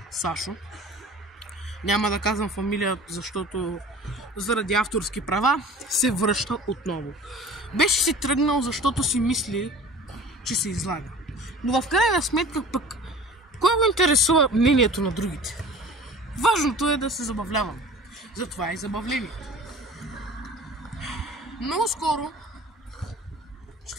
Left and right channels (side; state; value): both; normal; correlation 0.42